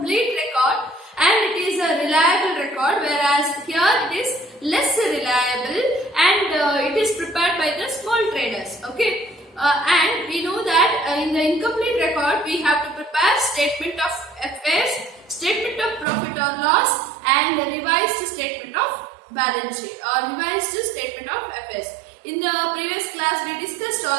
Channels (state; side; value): drops out; left; at 16.1 s